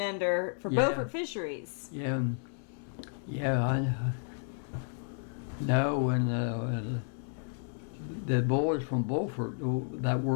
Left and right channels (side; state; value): right; silent; digital silence